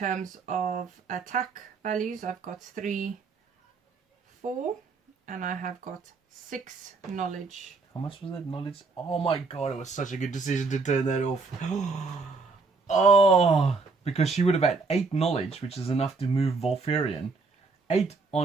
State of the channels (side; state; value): left; quieter; 4.3 dB